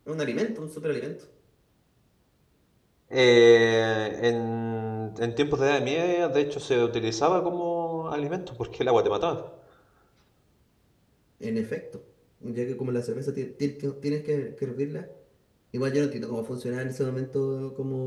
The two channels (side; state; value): both; identical; correlation 1.00